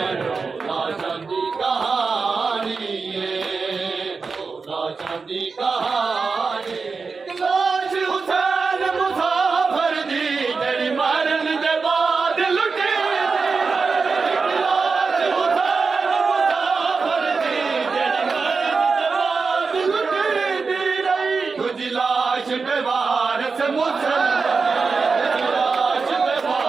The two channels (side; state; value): left; quieter; 4.7 dB